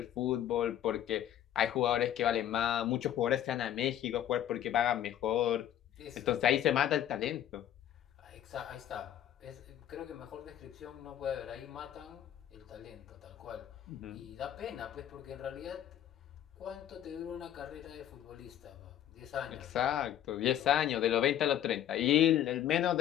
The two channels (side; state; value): right; quieter; 11.1 dB